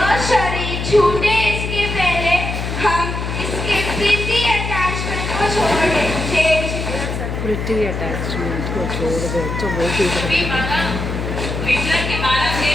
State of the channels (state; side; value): noise; left; hum, 4 dB below the sound